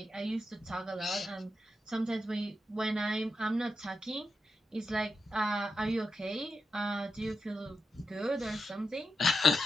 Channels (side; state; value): both; normal; correlation 0.87